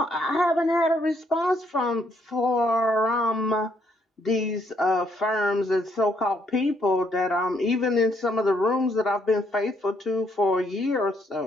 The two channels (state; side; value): normal; both; correlation 0.71